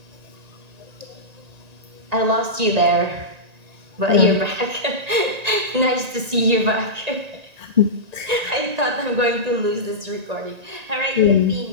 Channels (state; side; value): late; left; 1.9 ms